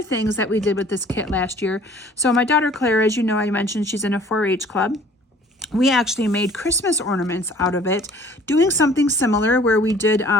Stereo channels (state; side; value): normal; both; correlation 0.53